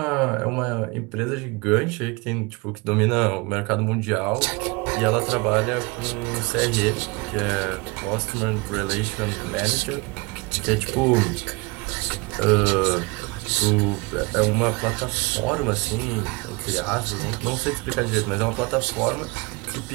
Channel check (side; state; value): left; quieter; 26.6 dB